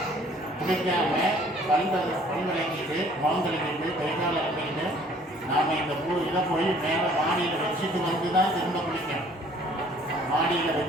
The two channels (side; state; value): both; normal; correlation 0.56